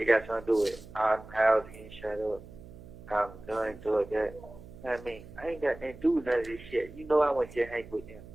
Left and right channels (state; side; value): noise; right; hum, 17 dB below the sound